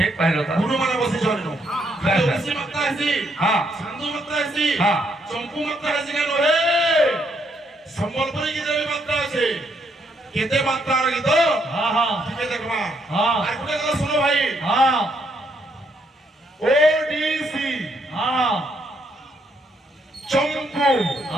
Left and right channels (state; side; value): normal; both; correlation 0.73